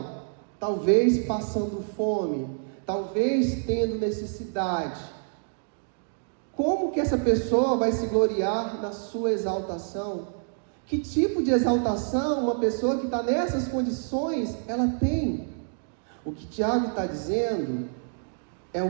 talvez passando fome, talvez tendo necessidade, como que essa pessoa vai se gloriar na sua exaltação? Que tipo de exaltação uma pessoa que está nessas condições, ela tem? O que Tiago está dizendo é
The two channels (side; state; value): left; silent; digital silence